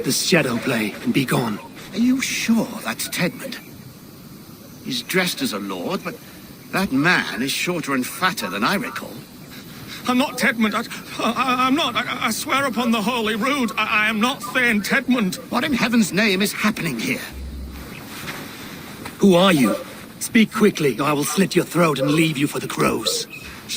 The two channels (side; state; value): both; identical; correlation 1.00